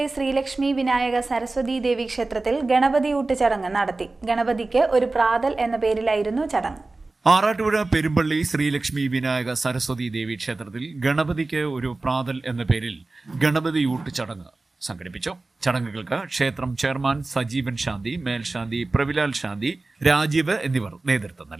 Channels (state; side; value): quieter; left; 3.3 dB